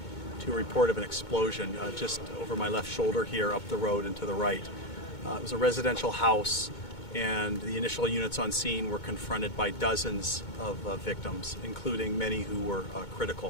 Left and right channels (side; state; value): right; late; 2.2 ms